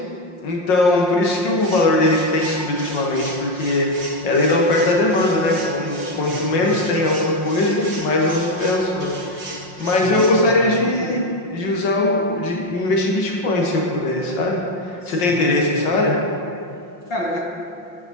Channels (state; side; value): late; right; 5.6 ms